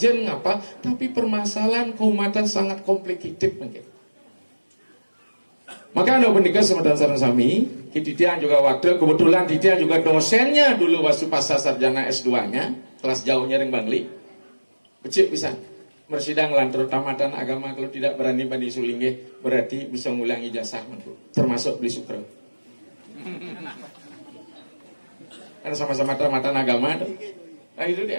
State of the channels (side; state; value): both; inverted; correlation -1.00